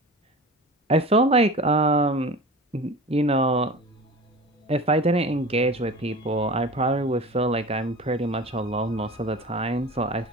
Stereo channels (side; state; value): both; normal; correlation 0.36